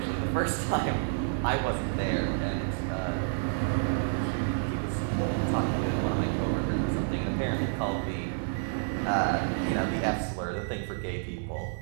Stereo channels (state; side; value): silent; left; digital silence